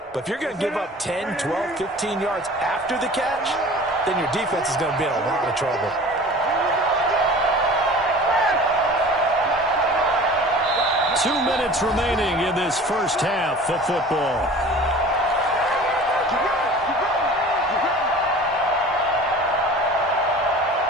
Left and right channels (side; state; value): both; normal; correlation 0.42